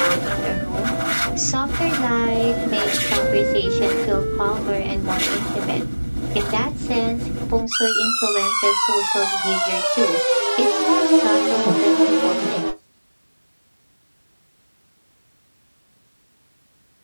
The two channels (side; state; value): both; inverted; correlation -1.00